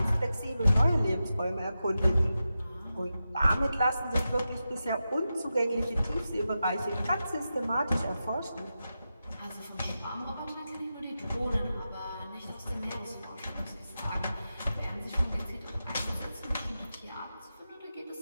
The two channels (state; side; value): inverted; both; correlation -0.91